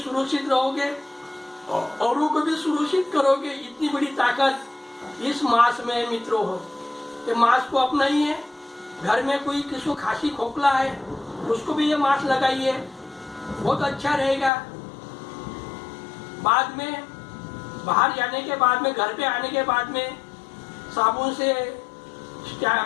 रहोगे, औरों को भी सुरक्षित करोगे। इतनी बड़ी ताकत इस मास्क में मित्रों हो। ये मास्क को अपनाइए। घर में कोई किसी को खांसी खोखला है उसको भी ये मास्क लगाइए, बहुत अच्छा रहेगा। बाद में बाहर जाने के बाद में, घर पे आने के बाद में साबुन से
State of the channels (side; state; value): right; drops out; at 14.5 s